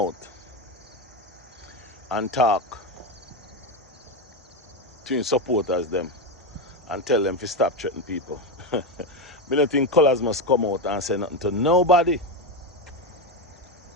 and talk to his supporters them and tell them to stop threatening people. Me don't think Colaz must come out and say nothing to nobody.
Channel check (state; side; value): normal; both; correlation 0.11